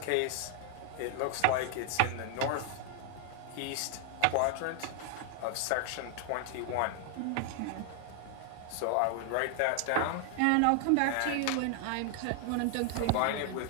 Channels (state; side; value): different; both; correlation 0.00